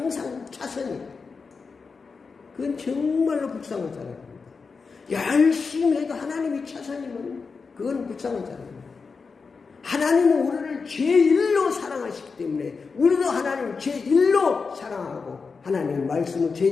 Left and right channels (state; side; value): quieter; right; 4.9 dB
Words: 차선이에요. 그건 정말로 불쌍한 사람입니다. 열심히 해도 하나님이 차선이면 그건 불쌍한 사람입니다. 하나님은 우리를 제1로 사랑하시기 때문에 우리도 하나님을 제1로 사랑하고 하나님의 말씀을